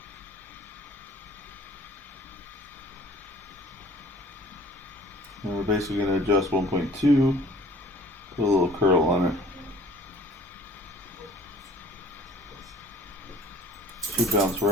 And we're basically going to adjust 1.2, put a little curl on it. Should bounce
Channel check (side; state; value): both; normal; correlation 0.51